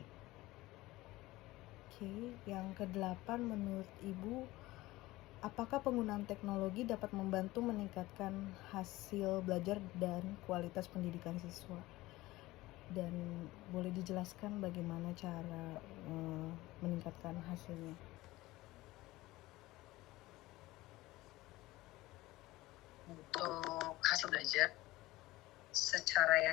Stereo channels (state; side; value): quieter; right; 18.6 dB